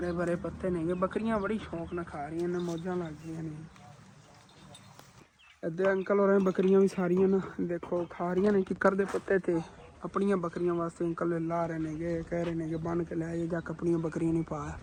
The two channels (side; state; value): both; identical; correlation 1.00